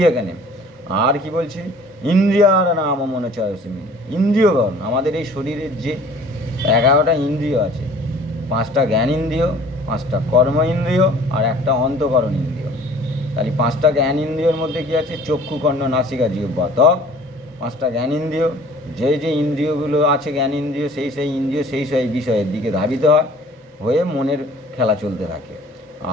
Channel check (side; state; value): both; normal; correlation 0.50